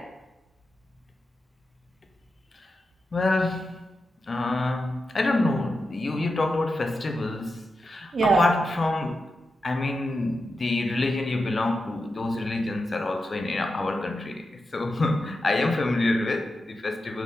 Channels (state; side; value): normal; both; correlation 0.89